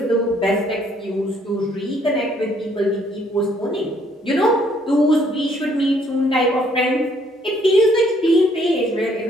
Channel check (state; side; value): normal; both; correlation 0.66